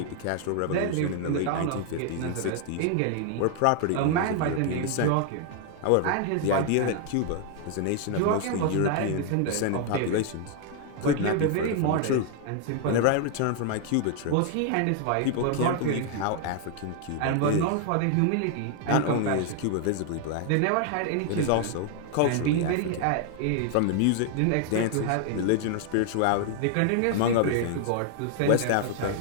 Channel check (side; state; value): both; different; correlation 0.00